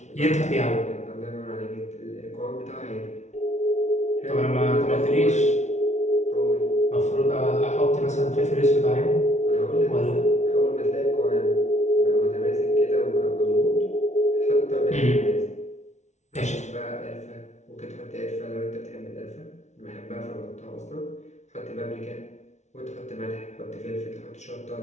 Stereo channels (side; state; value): right; late; 0.33 ms